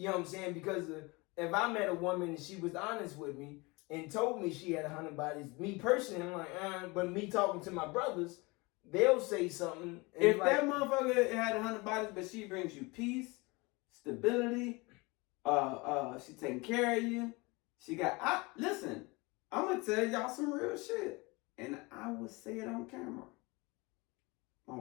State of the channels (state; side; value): quieter; right; 25.4 dB